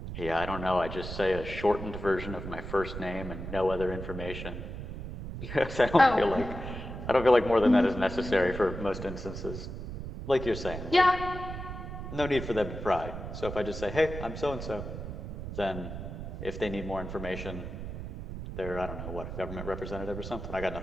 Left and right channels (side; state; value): right; noise; rumble, 8 dB below the sound